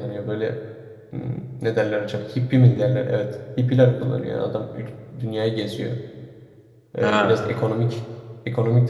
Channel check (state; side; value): identical; both; correlation 1.00